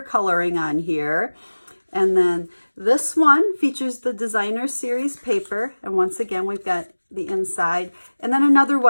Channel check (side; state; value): both; inverted; correlation -1.00